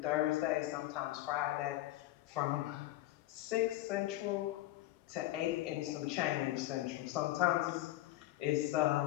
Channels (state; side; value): quieter; right; 15.8 dB